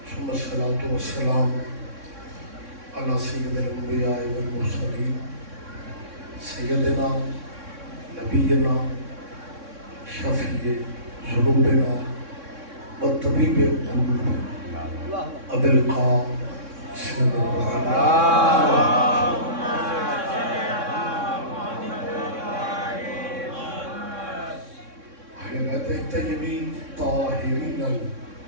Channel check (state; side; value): late; left; 3.6 ms